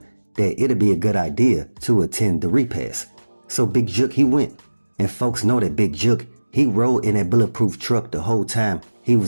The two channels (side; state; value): both; inverted; correlation -1.00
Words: that it'd be a good idea to attend the repast. So Big Jook, he went, and folks know that Big Jook, he rode in that bulletproof truck the whole time he